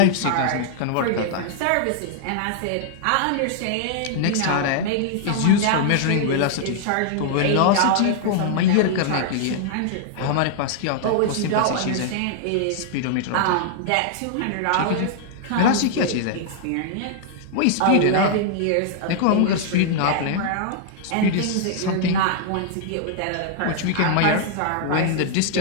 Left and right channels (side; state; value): both; different; correlation -0.01